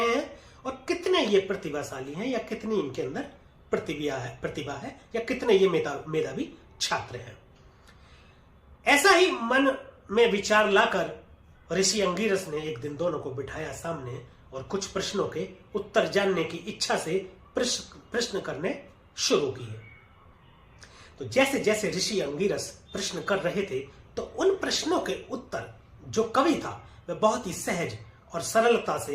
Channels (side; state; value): both; identical; correlation 1.00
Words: हैं और कितने ये प्रतिभाशाली हैं या कितनी इनके अंदर प्रतिभा है या कितने ये मेधावी छात्र हैं। ऐसा ही मन में विचार लाकर ऋषि अंगिरस ने एक दिन दोनों को बिठाया सामने और कुछ प्रश्नों के उत्तर जानने की इच्छा से प्रश्न करने शुरू किए। तो जैसे जैसे ऋषि अंगिरस प्रश्न कर रहे थे तो उन प्रश्नों के उत्तर जो कवि था वह बहुत ही सहज और सरलता